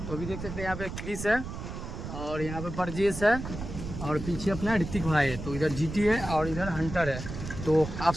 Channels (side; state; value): right; noise; rumble, 8 dB below the sound